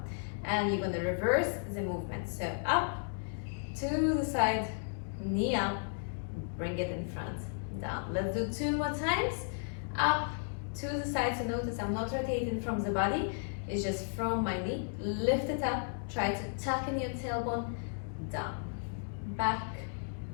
And you're going to reverse the movement. So up, to the side, knee up, bring it in front, down. Let's do 2 more times. Up, to the side. So notice I'm not rotating from the body. It's just from my knee. Lift it up. Try to tuck in your tailbone. Down. Back.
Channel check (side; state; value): right; silent; digital silence